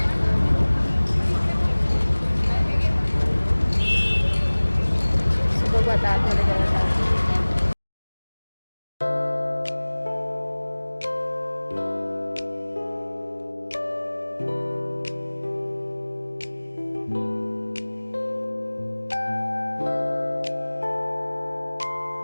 बघू आता आतमध्ये गेला.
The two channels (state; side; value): inverted; both; correlation -1.00